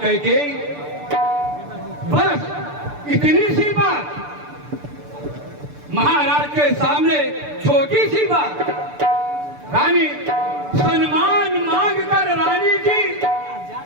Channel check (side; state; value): left; late; 6.8 ms